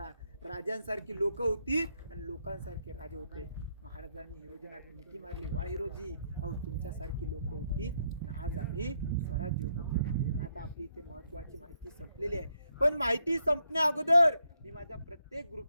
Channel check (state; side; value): inverted; both; correlation -0.76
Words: राजांसारखी लोक होती आणि लोकांसारखे राजे होते. महाराजांनी हिरोजींना मिठी मारली, वा हिरोजी, अहो तुमच्यासारखी लोक होती आणि आज आम्ही स्वराज्य उभं केलं. आता आपली इथे महत्वाची माहिती संपलेली आहे, पण माहिती संपण्या अगोदर मी माझ्या प्रत्येक